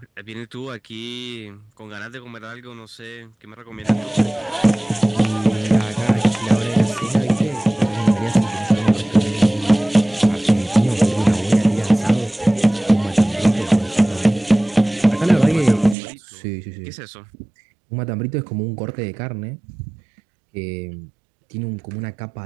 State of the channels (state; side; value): drops out; left; at 16.0 s